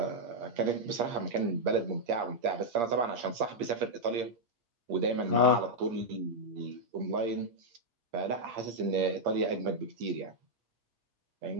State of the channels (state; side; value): late; left; 8.5 ms